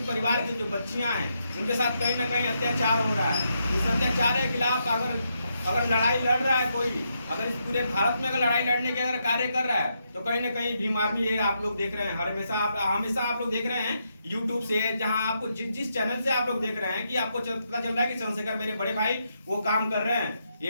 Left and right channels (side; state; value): both; inverted; correlation -0.81